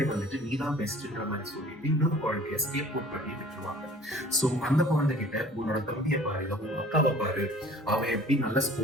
வந்துட்டு நீ தான் பெஸ்ட்ன்ற மாரி சொல்லிட்டு, இன்னொரு குழந்தைய ஸ்கேப் அவுட் பண்ணி விட்டுருவாங்க. சோ அந்த குழந்தைகிட்ட உன்னோட தம்பிய பாரு, இல்ல உன் அக்காவ பாரு, அவ எப்படி நல்லா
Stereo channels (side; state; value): both; normal; correlation 0.49